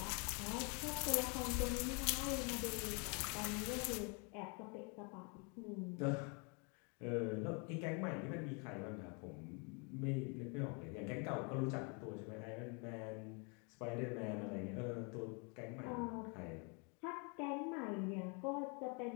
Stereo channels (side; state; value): right; quieter; 34.7 dB